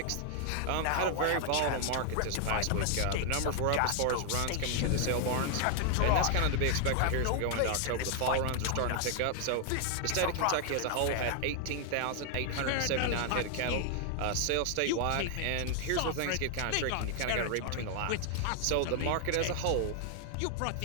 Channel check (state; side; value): different; both; correlation 0.00